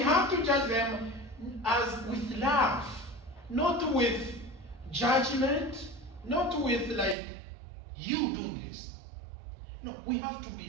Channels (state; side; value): drops out; left; at 7.2 s